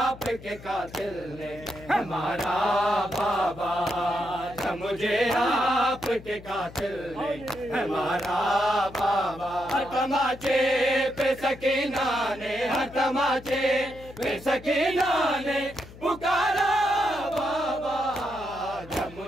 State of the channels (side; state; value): left; noise; hum, 18 dB below the sound